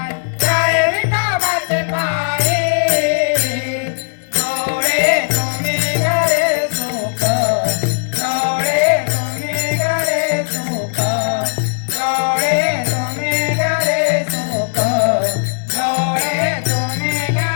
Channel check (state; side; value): silent; right; digital silence